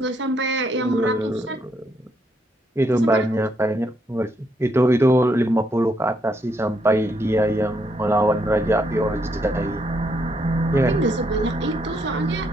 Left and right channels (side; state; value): both; normal; correlation 0.75